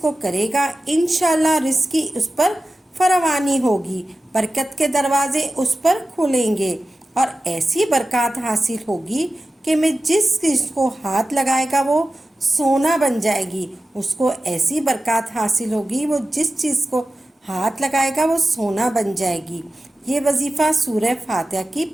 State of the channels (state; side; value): normal; both; correlation 0.94